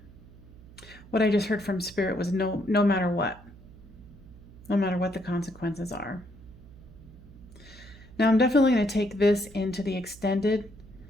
What I just heard from Spirit was no matter what. No matter what the consequences are. Now I'm definitely going to take this into the extended,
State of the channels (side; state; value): right; noise; hum, 20 dB below the sound